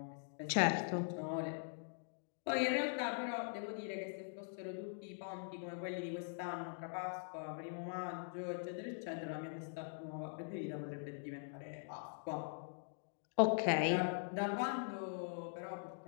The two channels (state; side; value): silent; right; digital silence